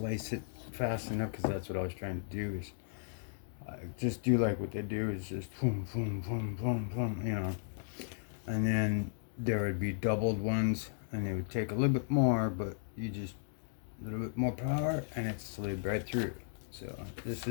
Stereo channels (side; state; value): right; silent; digital silence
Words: it fast enough, because that's what I was trying to do, is just do like what they do, is just boom, boom, boom, boom, boom, you know. And then there would be doubled ones, and they would take a little bit more, but you just a little bit more power, and it slid right through. So this